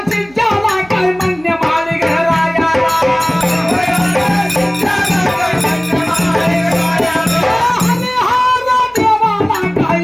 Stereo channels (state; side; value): noise; right; hum, 26 dB below the sound